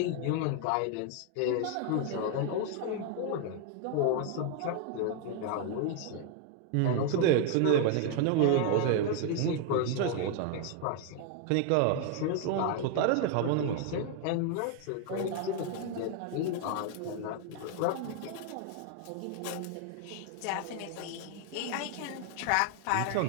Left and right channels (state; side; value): different; both; correlation 0.00